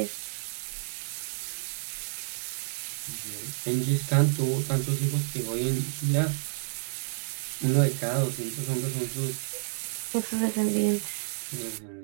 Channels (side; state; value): left; silent; digital silence